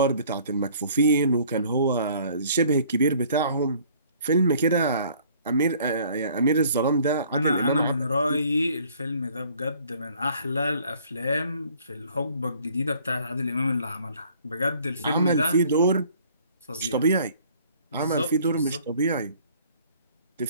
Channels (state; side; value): inverted; both; correlation -0.56